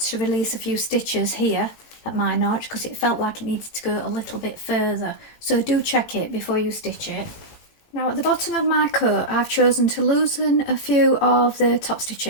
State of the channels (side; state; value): right; late; 18 ms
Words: to release a few stitches here at my notch because it felt like it needed to go a little bit further. So do check it before you stitch it. Now at the bottom of my coat I've chosen to loosen a few of the top